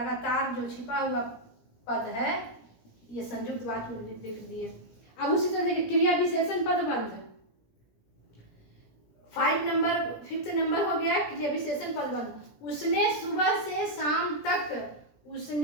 जो छिपा हुआ पद है ये संयुक्त वाक्य में लिख दिए। अब उसी तरह देखिए क्रिया विशेषण पदबंध, 5th नंबर हो गया क्रिया विशेषण पदबंध। उसने सुबह से शाम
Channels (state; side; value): late; right; 17 ms